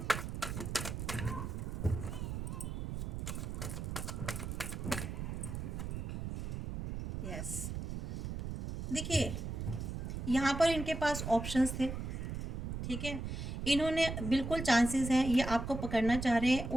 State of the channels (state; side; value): noise; right; rumble, 4 dB below the sound